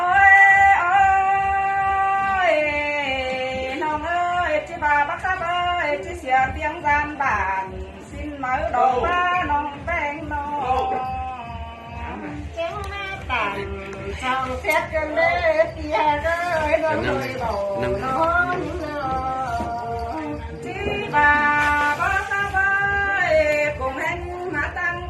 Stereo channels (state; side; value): identical; both; correlation 1.00